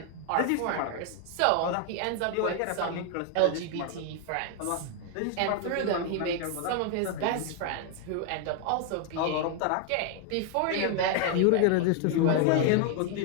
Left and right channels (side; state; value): both; different; correlation 0.00